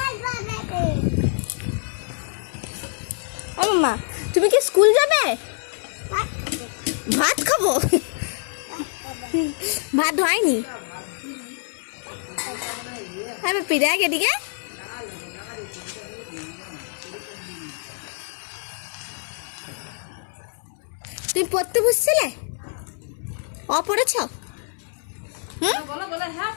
ও মাম্মা তুমি কি স্কুল যাবে? ভাত খাবো। ভাত হয়নি। আমি পিড়াক এদিকে। তুমি পড়তে বসছিলে? পড়েছ?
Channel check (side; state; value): right; silent; 62 dB below the other